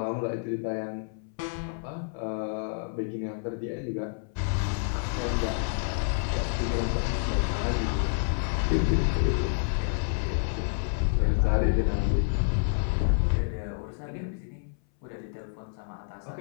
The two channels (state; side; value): silent; right; 59 dB below the other